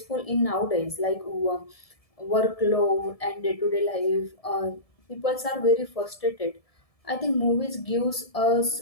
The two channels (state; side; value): late; right; 1.7 ms